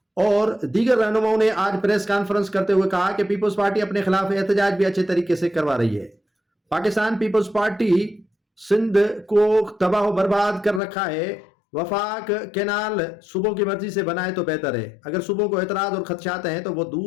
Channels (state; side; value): drops out; right; at 10.8 s